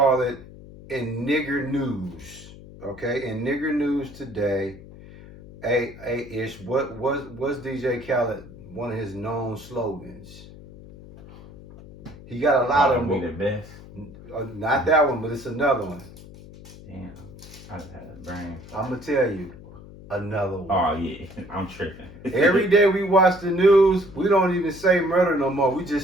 it in nigger news. Okay, in nigger news today. Ish, what's DJ Khaled one of his known slogans? He got a lot of them. Be the best. Not that one, but it's another one. Damn, I just had a brain. I'm gonna tell you another one. Oh yeah, I'm tripping. Every day we watch the news, we don't even say murder no more. We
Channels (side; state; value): left; noise; hum, 18 dB below the sound